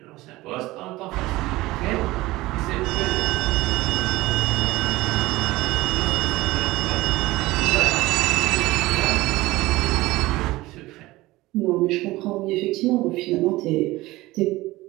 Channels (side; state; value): left; quieter; 18.9 dB